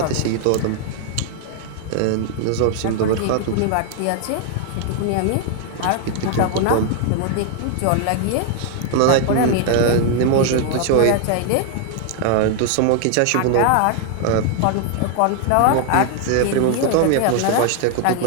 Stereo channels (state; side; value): different; both; correlation 0.00